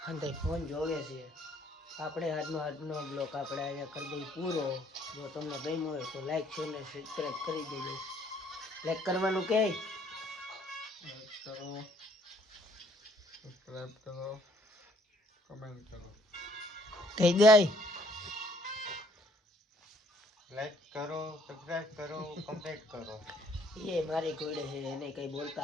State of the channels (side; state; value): both; normal; correlation 0.63